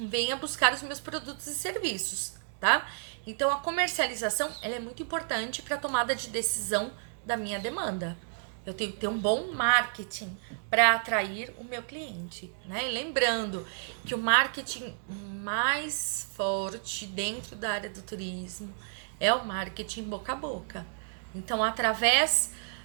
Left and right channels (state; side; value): silent; left; digital silence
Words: buscar os meus produtos e serviços, tá? Então a comercialização, ela é muito importante para a tomada de decisão da minha demanda. Eu tenho que ter um bom marketing para atrair o meu cliente, né? E lembrando que o marketing mais forte dentro da área do turismo é o marketing boca a boca. Então, através